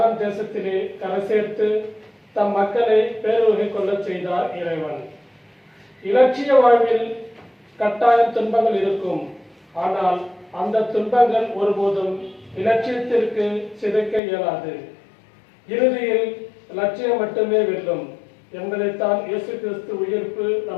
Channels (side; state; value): right; drops out; at 14.2 s